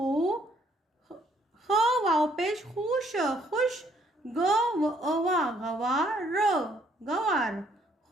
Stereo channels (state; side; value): normal; both; correlation 0.66